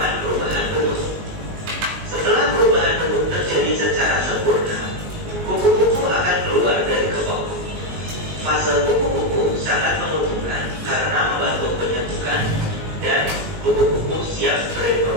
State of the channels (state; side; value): late; left; 19 ms